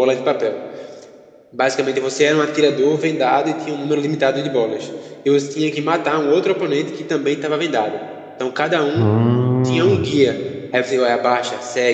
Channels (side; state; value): both; identical; correlation 1.00